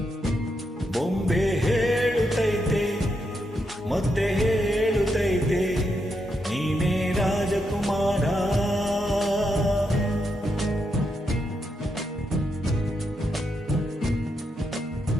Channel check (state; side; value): normal; both; correlation 0.82